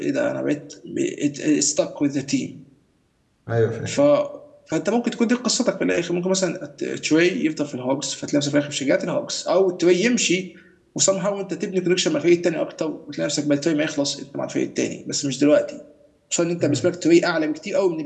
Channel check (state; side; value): identical; both; correlation 1.00